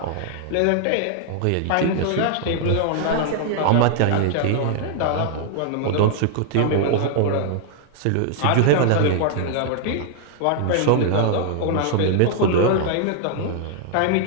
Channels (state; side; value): different; both; correlation 0.00